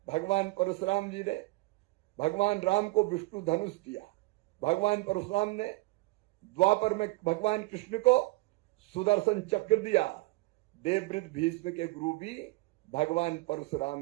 भगवान परशुराम जी ने भगवान राम को विष्णु धनुष दिया। भगवान परशुराम ने द्वापर में भगवान कृष्ण को सुदर्शन चक्र दिया। देवव्रत भीष्म के गुरु भी भगवान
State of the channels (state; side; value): quieter; left; 23.0 dB